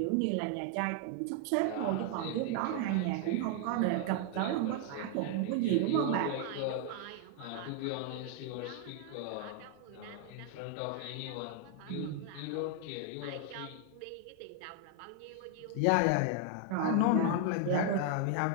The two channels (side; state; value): both; different; correlation 0.00